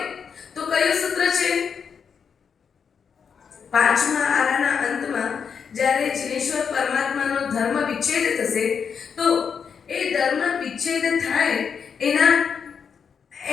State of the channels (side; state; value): right; quieter; 6.6 dB